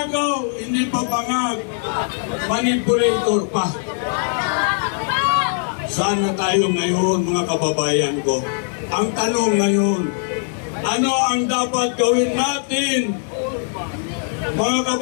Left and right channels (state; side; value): silent; right; 65 dB below the other